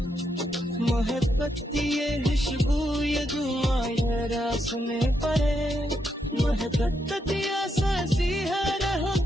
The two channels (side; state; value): both; normal; correlation 0.80